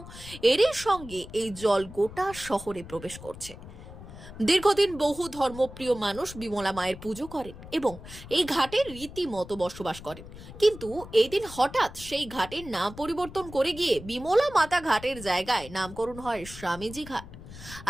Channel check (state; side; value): noise; left; rumble, 15 dB below the sound